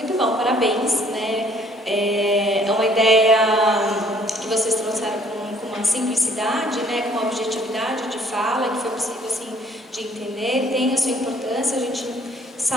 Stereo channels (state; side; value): normal; both; correlation 0.60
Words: bom, parabéns, né? É uma ideia que vocês trouxeram com uma simplicidade, né? Com uma objetividade de fala que foi possível assim, de entender, tem a sua importância. A gente